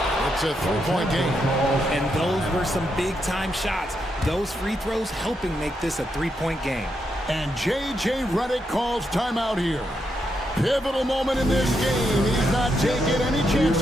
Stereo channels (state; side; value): normal; both; correlation 0.82